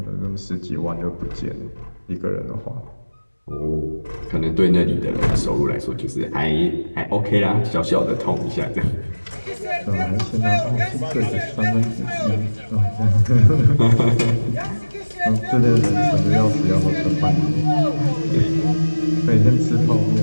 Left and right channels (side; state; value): both; inverted; correlation -1.00